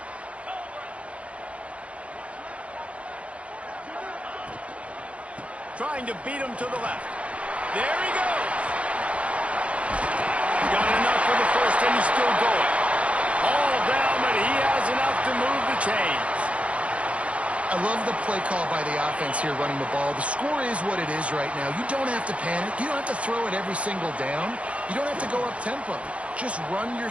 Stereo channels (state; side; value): late; left; 0.063 ms